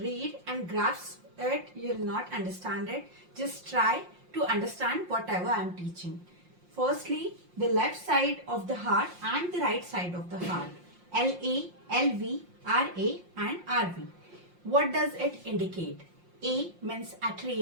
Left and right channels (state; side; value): late; left; 5.6 ms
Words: and grasp it, you will not understand it. Just try to understand whatever I am teaching. Firstly, the left side of the heart and the right side of the heart. LA, LV, RA and RV. What does it indicate? A means